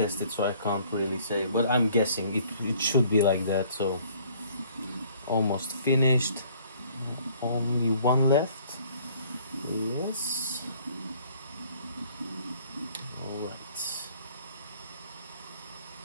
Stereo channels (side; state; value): both; inverted; correlation -0.58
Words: so I can't really say, but I'm guessing it should be like that. So almost finished, only one left. Yes. All right.